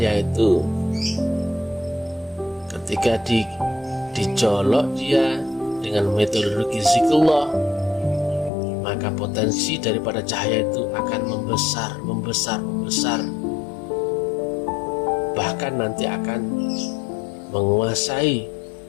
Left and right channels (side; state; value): right; drops out; at 8.5 s